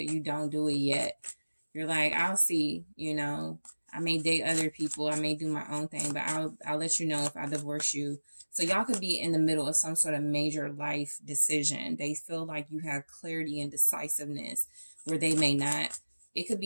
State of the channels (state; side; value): inverted; both; correlation -1.00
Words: You don't do it yet. You're like, I'll see, you know. I may date other people. I may do my own thing, but I'll let you know if I divorce you. So y'all could be in the middle of some sort of major life decision. They feel like you have clarity and decisiveness where they may not. It could